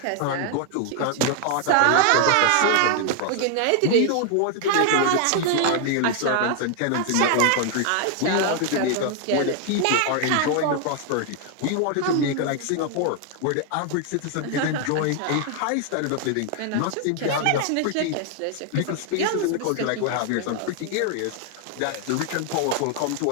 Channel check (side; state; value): both; different; correlation 0.00